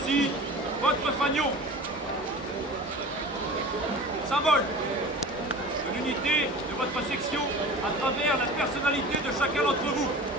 aussi votre fanion. Symbole de l'unité de votre section à travers la personnalité de chacun d'entre vous.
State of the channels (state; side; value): normal; both; correlation 0.37